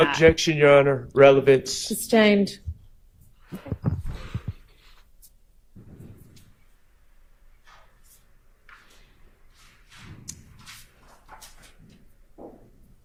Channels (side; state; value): both; identical; correlation 1.00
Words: Objection, Your Honor. Relevance. Sustained.